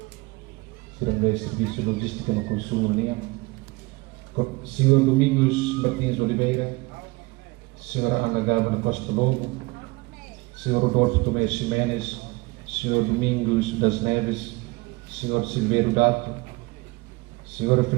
Serviço de Logística no Consumo, Senhor Domingos Martins Oliveira, Senhora Ana Gálvana Costa Lobo, Senhor Rodolfo Tomé Ximenes, Senhor Domingos das Neves, Senhor Silveiro Dato, Senhora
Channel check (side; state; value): left; quieter; 23.4 dB